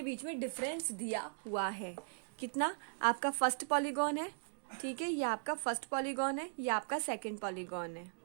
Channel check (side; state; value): left; silent; digital silence